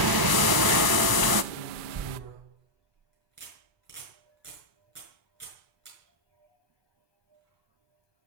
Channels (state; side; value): late; left; 1.0 ms